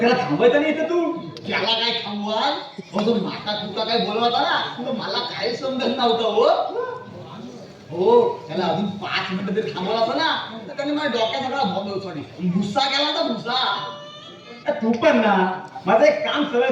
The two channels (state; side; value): identical; both; correlation 1.00